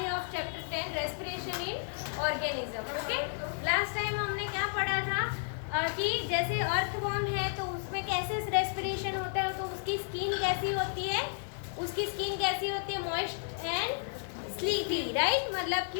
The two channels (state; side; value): silent; right; digital silence